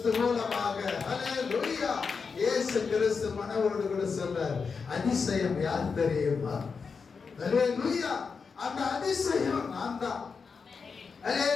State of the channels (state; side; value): quieter; right; 5.3 dB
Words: மூலமாக. ஹல்லேலூயா. இயேசு கிறிஸ்து மனவோடு கூட சொல்றார், அதிசயம் யார் தெரியுமா? ஹல்லேலூயா. அந்த அதிசயம் நான் தான்.